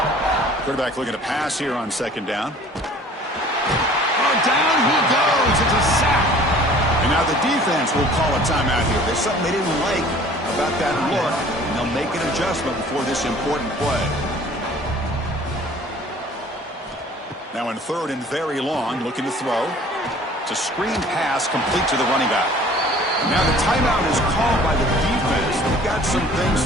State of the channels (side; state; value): both; normal; correlation 0.50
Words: Quarterback looking to pass here on second down. Oh, down he goes. It's a sack. And now the defense will call a timeout here. There's something they didn't like about that look, and they'll make an adjustment before this important play. Now in 3rd and very long, looking to throw. It's a screen pass complete to the running back. Now the timeout is called by the defense. They've got some